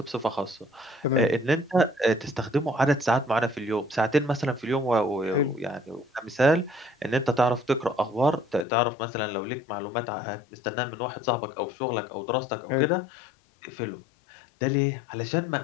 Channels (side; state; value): right; drops out; at 8.7 s